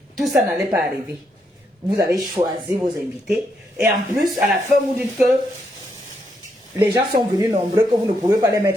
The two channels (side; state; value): both; normal; correlation 0.78